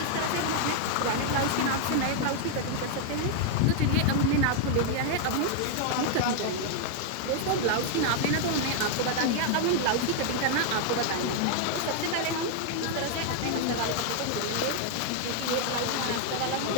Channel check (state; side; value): different; both; correlation 0.00